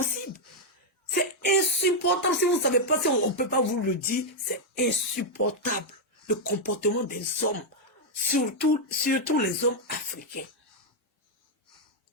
C'est insupportable. Si vous ne savez pas, si on ne peut pas vous le dire, c'est insupportable. Le comportement des hommes. Surtout les hommes africains.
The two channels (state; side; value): normal; both; correlation -0.01